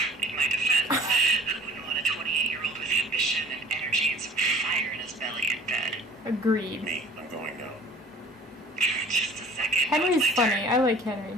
in my defense, who wouldn't want a 28-year-old with ambition and energy and some fire in his belly in bed? Agreed. Me, I'm going now. Just a second. Henry's funny. I like Henry.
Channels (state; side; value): normal; both; correlation 0.48